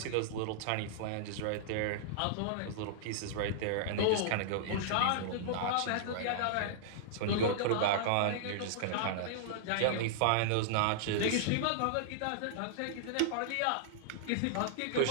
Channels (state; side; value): different; both; correlation -0.01